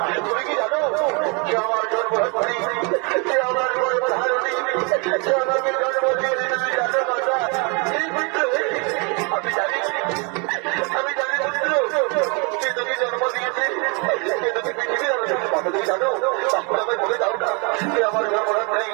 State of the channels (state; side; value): quieter; left; 33.0 dB